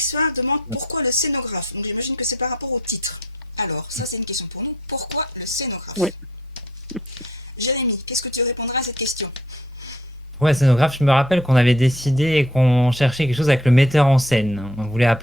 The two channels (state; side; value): normal; both; correlation 0.60